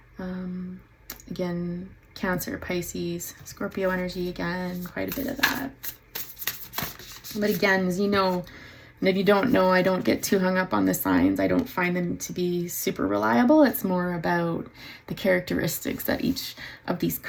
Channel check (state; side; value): identical; both; correlation 1.00